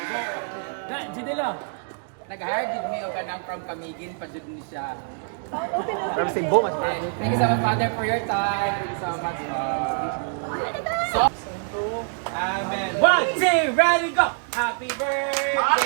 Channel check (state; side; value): silent; left; 62 dB below the other